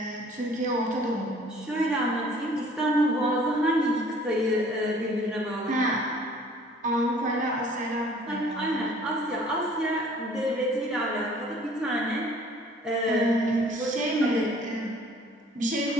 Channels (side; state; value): both; normal; correlation 0.54